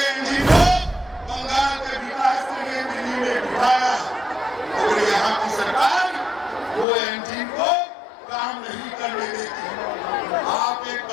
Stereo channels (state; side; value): drops out; right; at 6.9 s